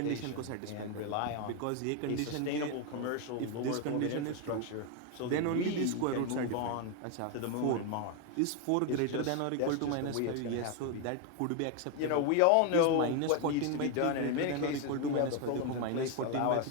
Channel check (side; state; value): both; different; correlation 0.01